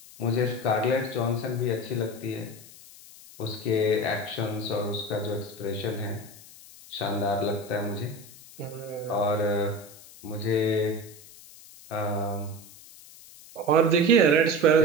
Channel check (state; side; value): noise; left; hiss, 20 dB below the sound